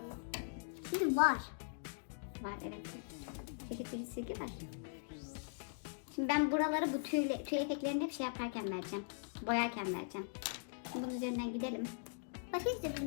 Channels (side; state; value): right; silent; digital silence